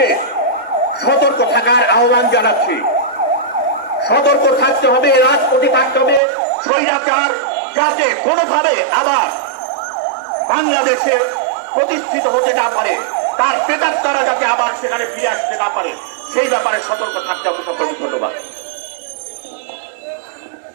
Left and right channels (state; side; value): drops out; left; at 6.2 s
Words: সতর্ক থাকার আহ্বান জানাচ্ছি। সতর্ক থাকতে হবে, রাজপথে থাকতে হবে। স্বৈরাচার যাতে কোনোভাবে আবার বাংলাদেশে প্রতিষ্ঠিত হতে না পারে, তার পেটার তারা যাতে আবার সেখানে ফিরে আসতে না পারে, সেই ব্যাপারে সতর্ক থাকতে হবে। সকলকে ধন্যবাদ।